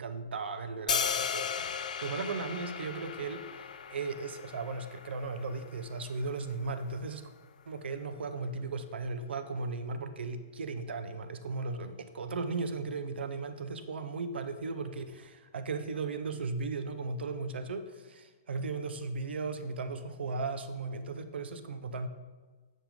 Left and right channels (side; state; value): both; inverted; correlation -0.42